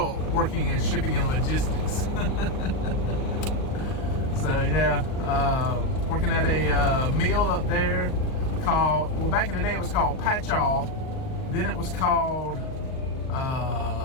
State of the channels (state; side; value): late; right; 38 ms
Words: working in shipping and logistics. So yeah, working at a mill up there called, well, back in the day it was called Patchall. Then it was called